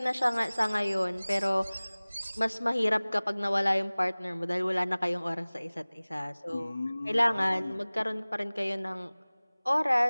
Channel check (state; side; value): inverted; both; correlation -1.00